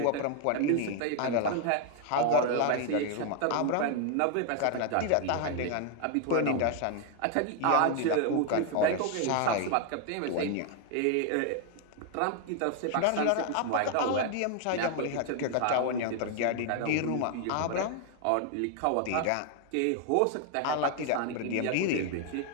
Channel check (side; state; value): both; different; correlation 0.00